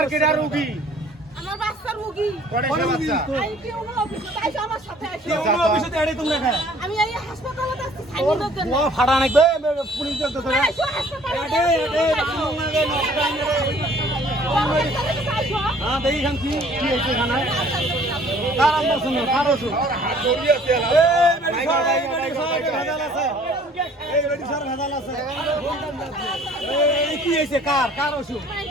কেডা রোগী আমার বাচ্চা রোগী কয়টা বাচ্চা আই কেউ না অফিসে তাইছো আমার সাথে আইছো কেউ অফিসে এড়ে তুমি রাখা আমি এই হাসপাতালে যাচ্ছি সাইনের জন্য ও ফাড়া নাকবে পুলিশ দেখতে ধরে আইছো হাসপাতালে এড়ে রামনগরে নষ্ট আইছো হ্যাঁ দেখি খান কি হয়েছে এখানে কার আমরা শুনো কারো শুনো এই কি হয়েছে কার কার ওষুধ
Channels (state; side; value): normal; both; correlation 0.55